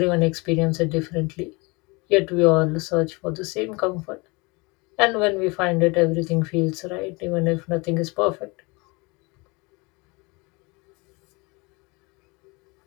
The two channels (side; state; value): right; quieter; 27.0 dB